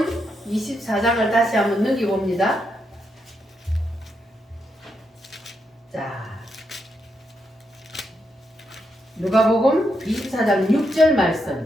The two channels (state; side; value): normal; both; correlation 0.81